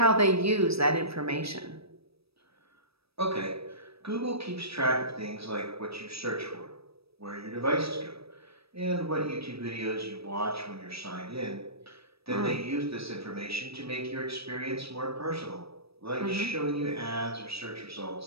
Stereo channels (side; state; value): left; late; 0.77 ms